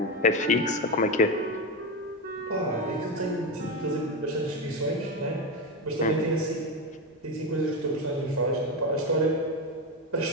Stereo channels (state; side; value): normal; both; correlation 0.14